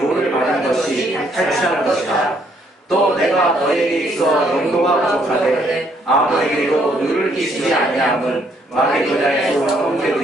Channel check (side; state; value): both; normal; correlation 0.69